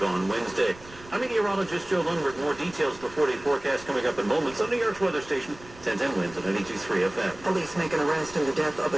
on Wednesday. I'm meteorologist Joe Lundberg. More details, the 4-day forecast coming up in moments on New York's weather station, 1010 winds at 92.3 FM. Police make an arrest in the death of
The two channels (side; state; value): right; noise; rumble, 20 dB below the sound